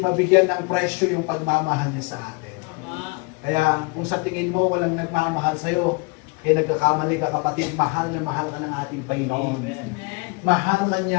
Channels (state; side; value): quieter; right; 28.4 dB